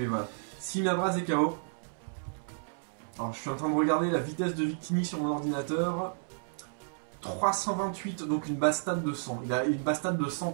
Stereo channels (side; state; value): left; silent; 57 dB below the other